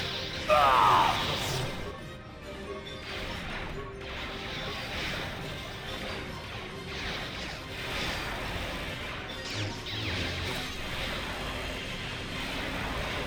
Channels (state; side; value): identical; both; correlation 1.00